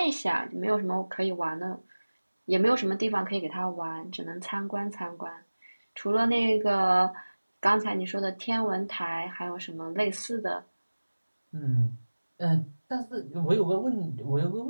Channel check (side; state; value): both; inverted; correlation -1.00